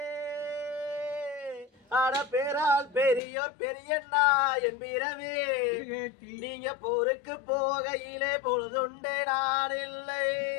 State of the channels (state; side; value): drops out; right; at 3.2 s